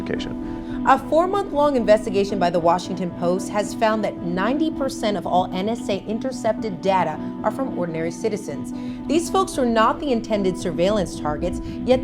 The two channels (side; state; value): both; identical; correlation 1.00